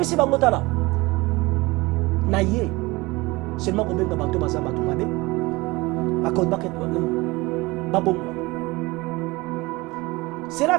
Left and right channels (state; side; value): quieter; left; 22.5 dB